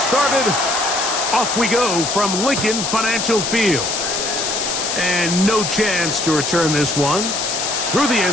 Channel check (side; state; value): left; noise; hiss, 2 dB below the sound